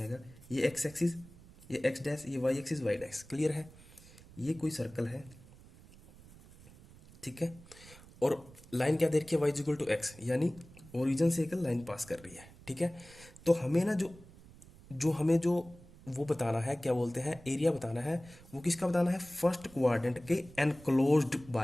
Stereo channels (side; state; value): right; noise; rumble, 21 dB below the sound